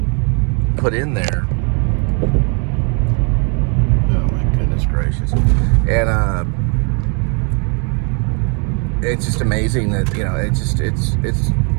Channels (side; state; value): left; quieter; 37.5 dB